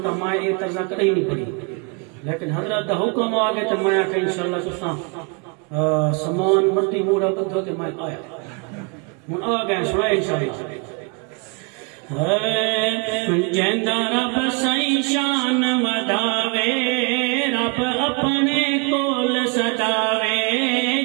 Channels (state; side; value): quieter; left; 32.2 dB